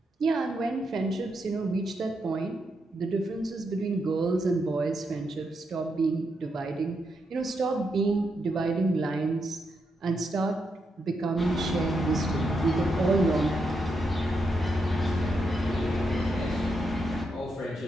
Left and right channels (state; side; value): normal; both; correlation 0.82